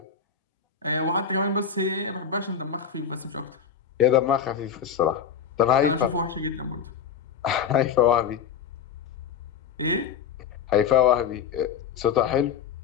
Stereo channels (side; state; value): right; quieter; 7.3 dB